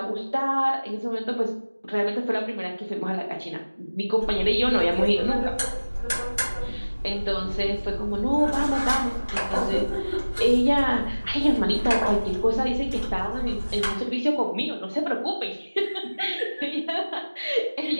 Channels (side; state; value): both; inverted; correlation -1.00